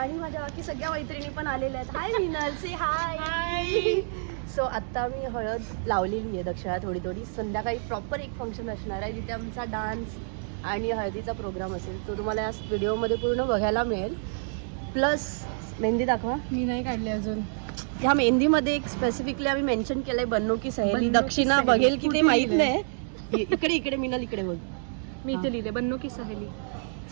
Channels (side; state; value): left; silent; digital silence